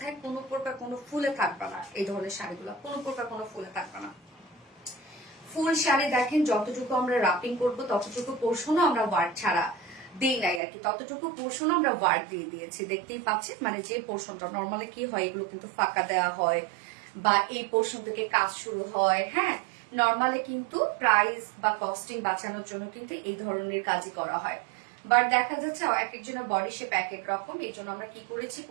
কোনো প্রকার কোনো ফুলে থাকবে না। এই ধরনের শাড়িগুলো কোনো প্রকার কোনো ফুলে থাকবে না। ফুল শাড়ি দেখেন, যতটুকু আমরা রাপিং করবো ততটুকু পোর্শনও আমরা ওয়ার্ক ছাড়া দিই নাই আর কি, ততটুকু পোর্শনও আমরা ওয়ার্ক দিয়ে দিয়েছি। দেখতেই পাচ্ছেন, মানে যে পোর্শনটা নর্মালি কি হয়, এগুলো কিন্তু ফাঁকা দেওয়া হয়, বা এই পোর্শন থেকে কাজ শুরু হয়, হ্যাঁ নর্মালি কিন্তু প্রাইস বা কস্টিং বাঁচানোর জন্য কিন্তু এই ধরনের কাজই করা হয়। বাট দেখা যাচ্ছে এক একজনের বডি শেপ এক এক রকম, এই জন্য আমরা কি করেছি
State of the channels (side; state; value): left; drops out; at 10.6 s